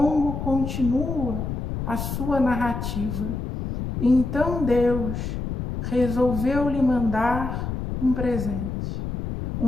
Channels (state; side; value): noise; left; rumble, 4 dB below the sound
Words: continua a sua narrativa. Então Deus resolveu lhe mandar um presente.